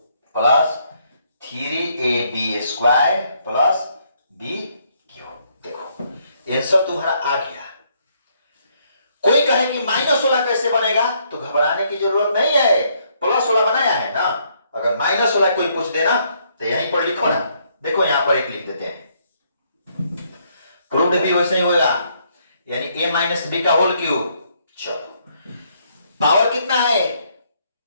plus 3ab square plus b cube. देखो आंसर तुम्हारा आ गया। कोई कहे कि माइनस वाला कैसे बनेगा तो घबराने की जरूरत नहीं है, प्लस वाला बनाया है ना, अगर माइनस वाला कोई पूछ देना तो यहीं पर लिखो ना, देखो यहां पर एक लिख देते हैं, प्रूव्ड भी वैसे ही होगा, यानी a माइनस बी का होल क्यूब। चलो पावर कितना है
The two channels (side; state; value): both; inverted; correlation -0.71